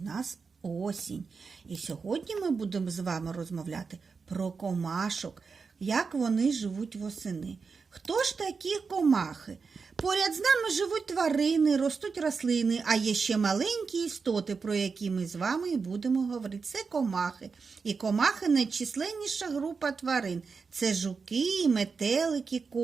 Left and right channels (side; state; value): left; quieter; 5.1 dB